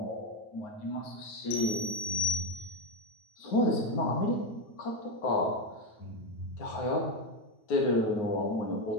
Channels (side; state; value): right; late; 9.4 ms